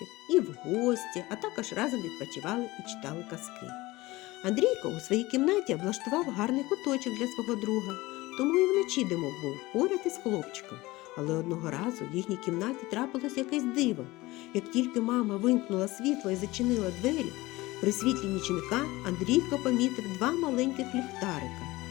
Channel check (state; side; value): quieter; right; 20.0 dB